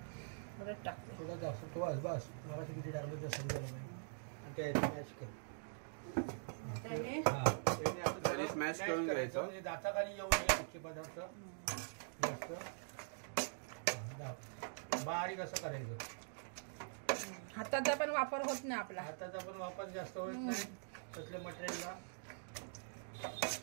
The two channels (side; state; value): left; silent; digital silence